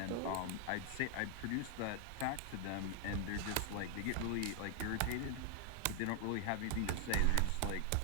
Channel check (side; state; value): both; different; correlation 0.00